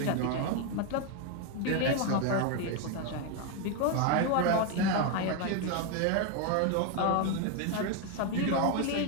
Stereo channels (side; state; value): both; different; correlation 0.01